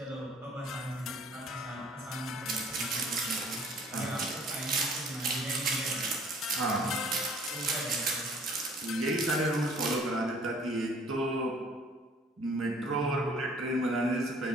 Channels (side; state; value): both; normal; correlation 0.54